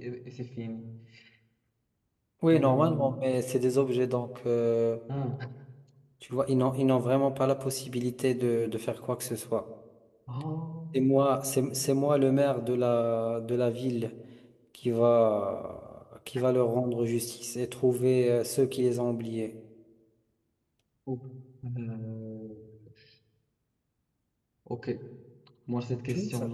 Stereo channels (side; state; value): both; identical; correlation 1.00